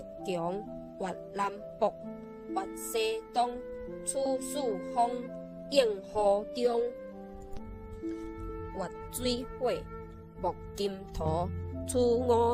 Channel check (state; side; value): identical; both; correlation 1.00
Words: 强；月南北，月西东。处暑风，应河中。月水火，木金土。处